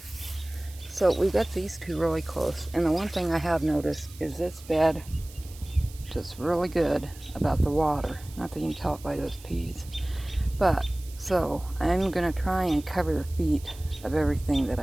So we've got these two really close. And the one thing I have noticed is this bed just really good about the water. Not that you can tell it by those peas. But, so, I'm going to try and cover the feet of everything that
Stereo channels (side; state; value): right; noise; hiss, 20 dB below the sound